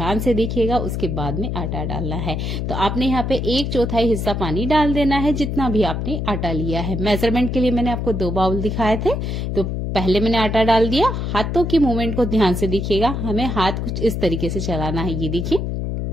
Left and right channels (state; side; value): noise; left; hum, 2 dB below the sound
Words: से देखिएगा, उसके बाद में आटा डालना है। तो आपने यहाँ पे 1/4 हिस्सा पानी डाल देना है जितना भी आपने आटा लिया है। मेजरमेंट के लिए मैंने आपको 2 बाउल दिखाए थे। तो पहले मैंने आटा डाल दिया। हाथों की मूवमेंट को ध्यान से देखिएगा, हमें हाथ कुछ इस तरीके से चलाना है। ये देखिए,